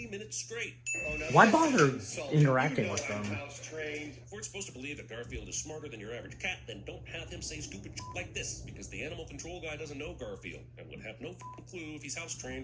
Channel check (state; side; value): identical; both; correlation 1.00